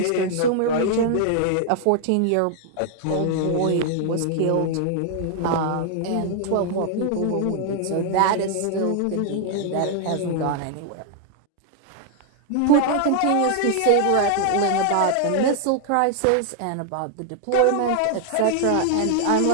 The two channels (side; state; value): both; different; correlation 0.00